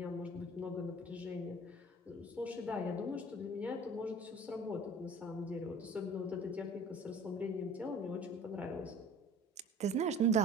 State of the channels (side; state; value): both; normal; correlation 0.46